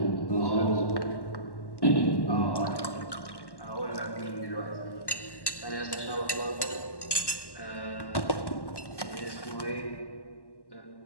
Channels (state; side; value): late; right; 1.1 ms